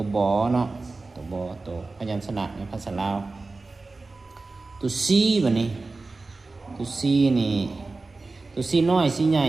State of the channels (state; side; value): quieter; left; 3.6 dB